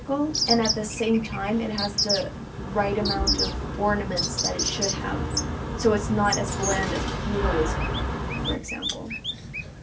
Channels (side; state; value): both; identical; correlation 1.00